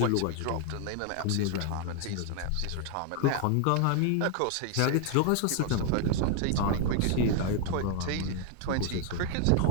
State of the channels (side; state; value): both; different; correlation 0.01